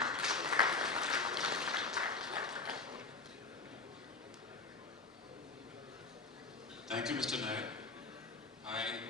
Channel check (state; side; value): quieter; right; 4.1 dB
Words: Thank you, Mr. Nair. I